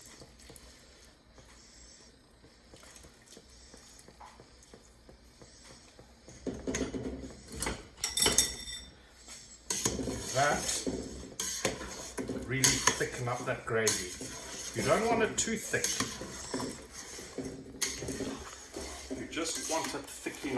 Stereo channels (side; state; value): both; identical; correlation 1.00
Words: That really thicken up that gravy. You don't want it too thick. You just want it thick